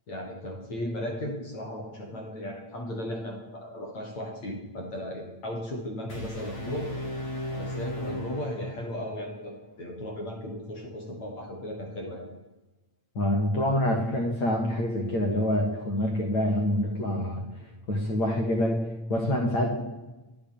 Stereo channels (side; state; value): right; late; 8.8 ms